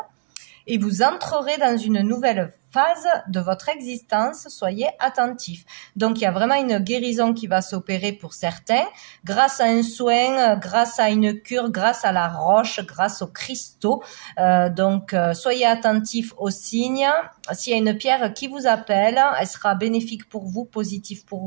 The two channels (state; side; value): silent; left; 65 dB below the other